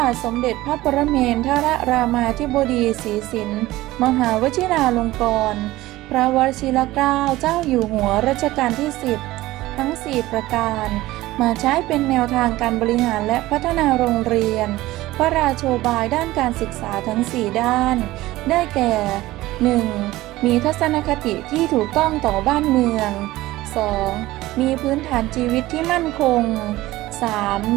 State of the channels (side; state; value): left; quieter; 17.4 dB